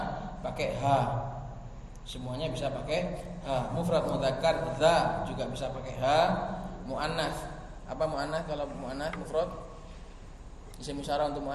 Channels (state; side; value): identical; both; correlation 1.00